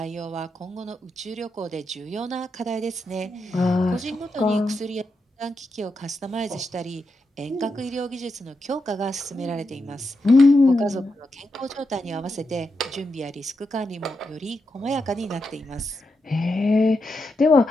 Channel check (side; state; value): both; normal; correlation 0.85